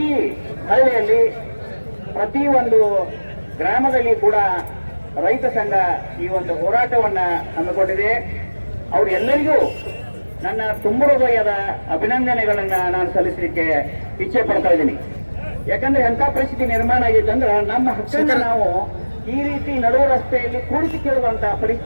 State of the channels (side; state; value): both; inverted; correlation -1.00